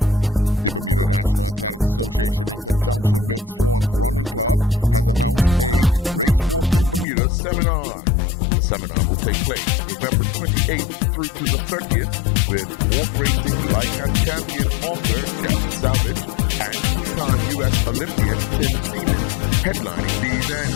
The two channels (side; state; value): right; drops out; at 7.1 s